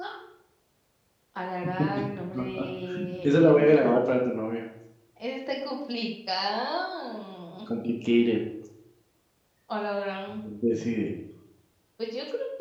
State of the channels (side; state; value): both; identical; correlation 1.00